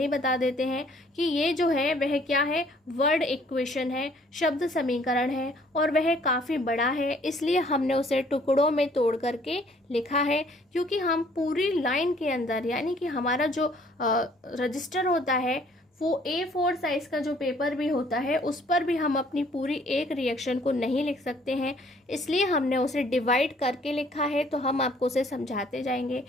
ही बता देते हैं कि ये जो है वह क्या है? वर्ड इक्वेशन है, शब्द समीकरण है और वह काफ़ी बड़ा है, इसलिए हमने उसे टुकड़ों में तोड़ करके लिखा है, क्योंकि हम पूरी लाइन के अंदर यानी कि हमारा जो रजिस्टर होता है वो A4 साइज का जो पेपर भी होता है उस पर भी हम अपनी पूरी एक रिएक्शन को नहीं लिख सकते हैं, इसलिए हमने उसे डिवाइड करके लिखा है। तो हम आपको उसे समझाते जाएंगे।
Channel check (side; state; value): both; normal; correlation 0.60